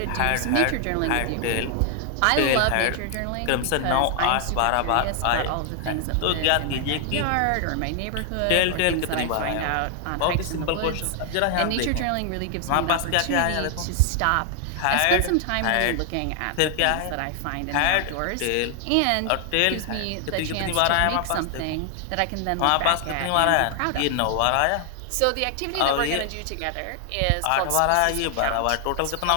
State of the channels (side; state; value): both; different; correlation 0.00